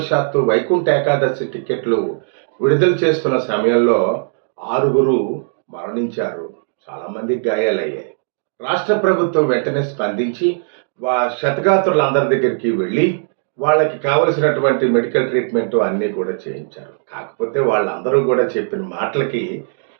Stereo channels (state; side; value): silent; left; 67 dB below the other